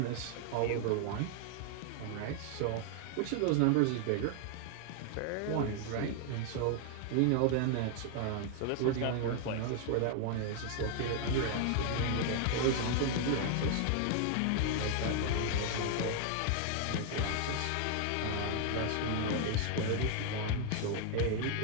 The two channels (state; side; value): different; both; correlation 0.00